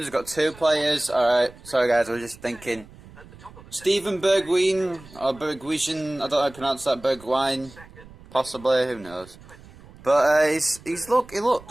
we've got 2 players. Alright, sorry guys, I was just thinking. Steven Bergwijn, or Bergwijn, I don't know how to pronounce that, Bergwijn, possibly, who knows. But he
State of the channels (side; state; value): right; noise; rumble, 21 dB below the sound